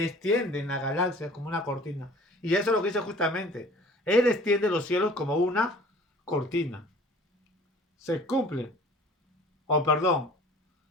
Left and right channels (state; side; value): normal; both; correlation 0.48